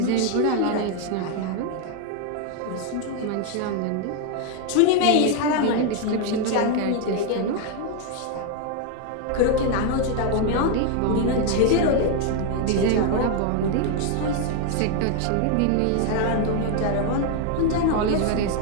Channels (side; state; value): both; different; correlation 0.01